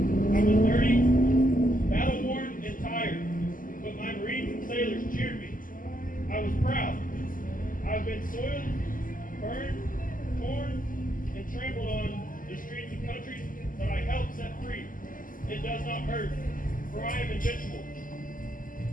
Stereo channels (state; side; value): late; right; 0.40 ms